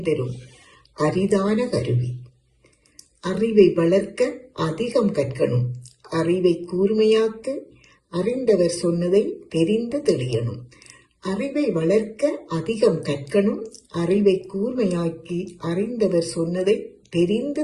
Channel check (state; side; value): identical; both; correlation 1.00